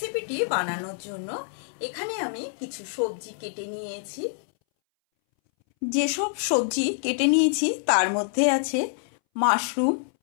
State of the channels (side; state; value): right; silent; 61 dB below the other